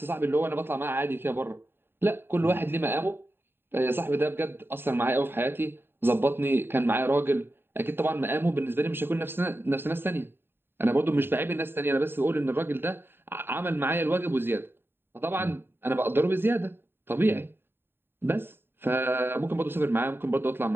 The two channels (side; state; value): left; late; 0.11 ms